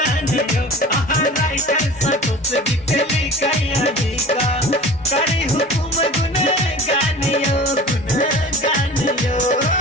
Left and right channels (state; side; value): normal; both; correlation 0.40